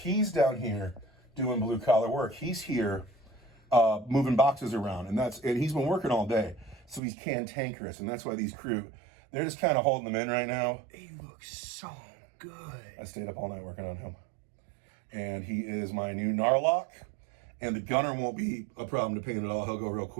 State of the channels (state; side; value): drops out; left; at 7.0 s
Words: down here doing blue-collar work. He's here moving boxes around. And he's been working all day. So he's cantankerous. And that's why these Kroot, they're just kind of holding them in right now. He looks so good. I stayed up all night working on him. And he is my new Knarloc. And the gunner won't be a problem to paint at all. He'll go real